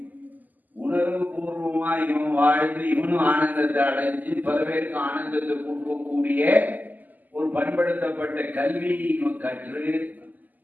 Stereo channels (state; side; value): late; left; 0.083 ms